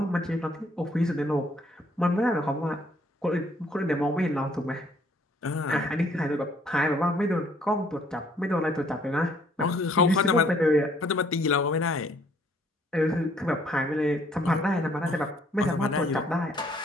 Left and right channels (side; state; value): both; normal; correlation 0.64